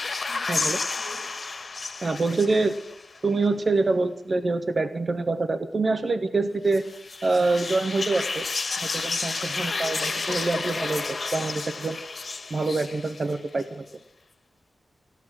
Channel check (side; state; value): both; normal; correlation 0.92